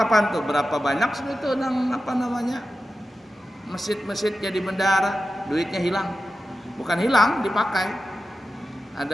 tuh berapa banyak itu masjid-masjid jadi bendahara, duitnya hilang. Bukan hilang, dipakai.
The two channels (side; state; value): both; normal; correlation 0.93